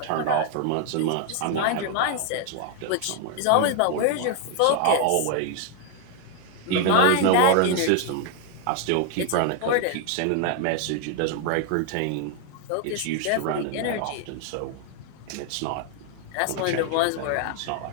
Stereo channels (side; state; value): both; different; correlation 0.00